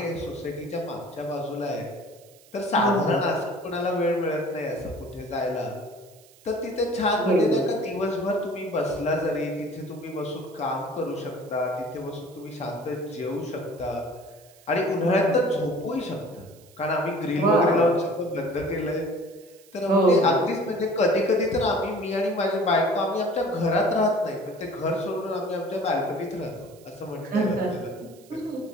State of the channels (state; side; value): noise; right; hiss, 26 dB below the sound